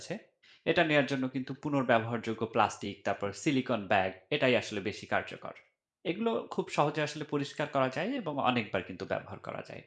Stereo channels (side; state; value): both; identical; correlation 1.00